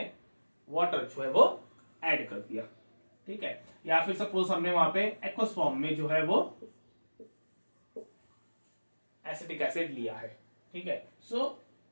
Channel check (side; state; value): both; inverted; correlation -1.00